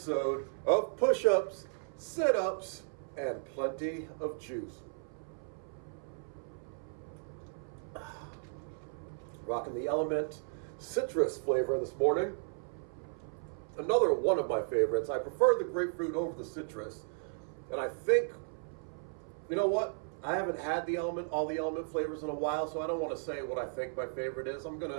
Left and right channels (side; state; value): left; silent; 54 dB below the other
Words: of Push-Ups, Sit-Ups, and Plenty of Juice. Rocking the Element citrus flavor this morning. Another one of my favorites. I prefer the grapefruit over the citrus. And I think, you know what? I haven't had all the element flavors in a while, so I don't want to say what I think my favorite is. I'm going